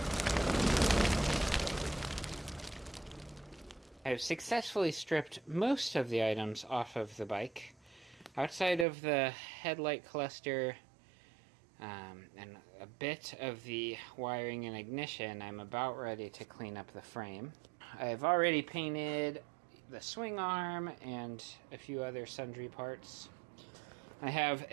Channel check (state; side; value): drops out; left; at 8.8 s